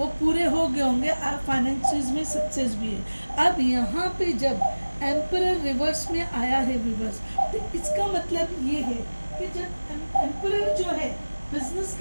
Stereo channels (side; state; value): both; inverted; correlation -1.00